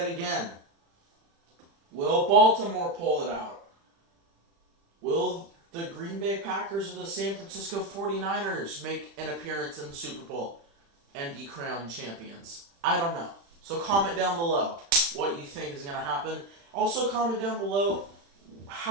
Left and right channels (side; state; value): left; late; 35 ms